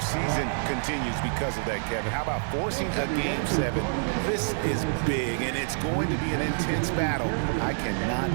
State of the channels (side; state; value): left; silent; digital silence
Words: season continues because of that, Kevin. How about forcing a Game 7? This is big, and it's going to be an intense battle. I cannot